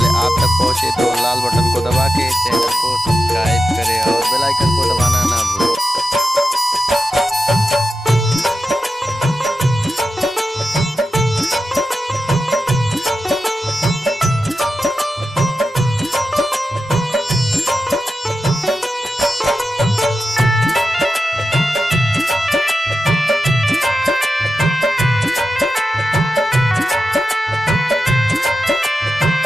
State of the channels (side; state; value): both; normal; correlation 0.90